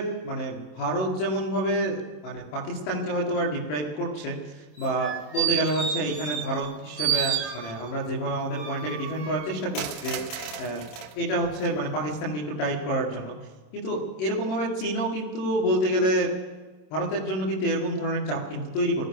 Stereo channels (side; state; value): right; late; 27 ms